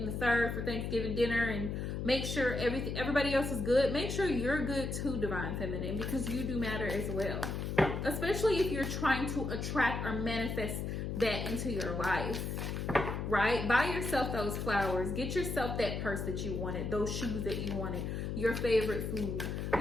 the third for Thanksgiving dinner, and make sure everybody else is good. Make sure you're good too, Divine Feminine, because you do matter as well. Especially if you're trying to attract or manifest that into your life. right? Buy yourself those flowers. Get yourself that purse that you wanted, those shoes that you wanted, your favorite food.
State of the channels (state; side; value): noise; left; hum, 3 dB below the sound